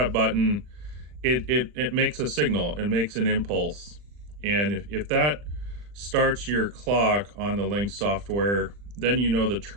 button, it makes a signal, it makes an impulse. And if that starts your clock on the Lynx software, then you know the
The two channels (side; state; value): left; late; 40 ms